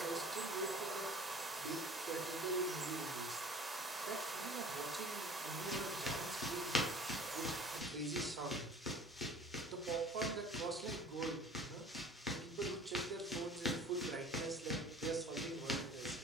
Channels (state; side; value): normal; both; correlation 0.45